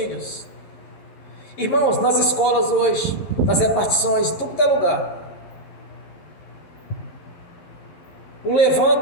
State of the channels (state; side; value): late; right; 11 ms